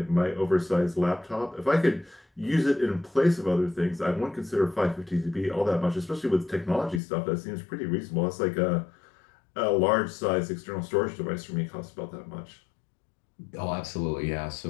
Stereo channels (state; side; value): drops out; right; at 7.0 s